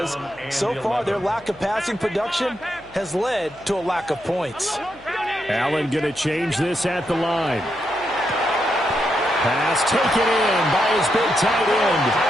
so far their lack of passing production has led to a lack of points. Allen going to change this at the line. Pass taken in by his big tight end.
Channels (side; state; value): left; noise; hum, 25 dB below the sound